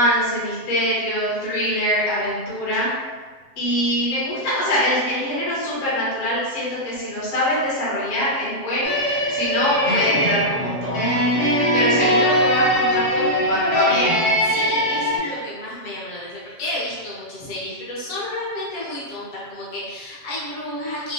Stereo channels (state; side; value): late; right; 7.4 ms